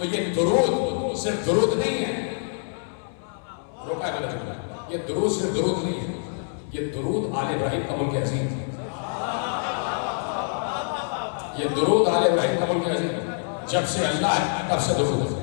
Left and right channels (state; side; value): silent; right; 61 dB below the other